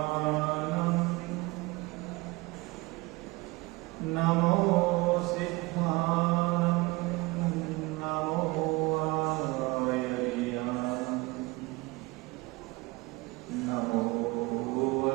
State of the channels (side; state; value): left; quieter; 23.3 dB